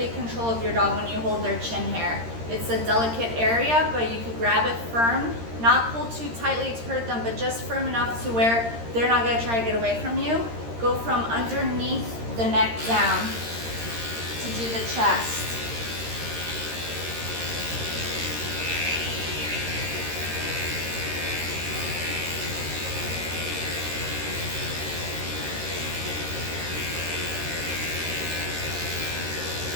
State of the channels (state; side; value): late; left; 13 ms